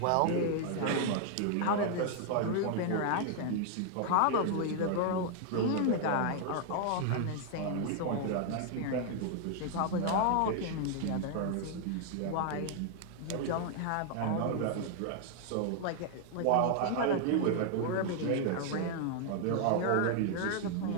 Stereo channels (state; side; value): different; both; correlation 0.00